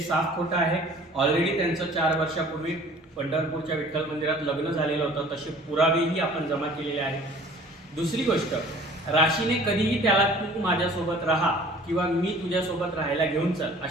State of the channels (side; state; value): both; normal; correlation 0.49